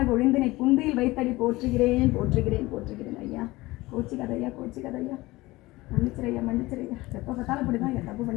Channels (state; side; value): quieter; right; 20.1 dB